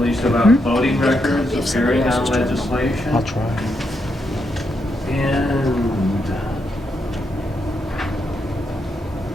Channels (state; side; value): normal; both; correlation 0.81